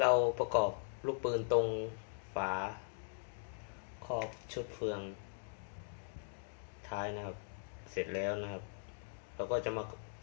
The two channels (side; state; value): right; silent; digital silence